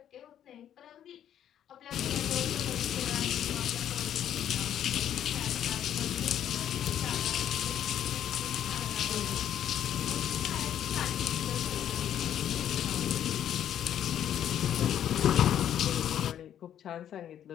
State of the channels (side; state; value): right; quieter; 10.3 dB